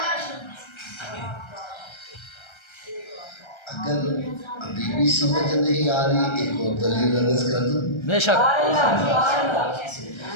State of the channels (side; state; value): right; late; 1.3 ms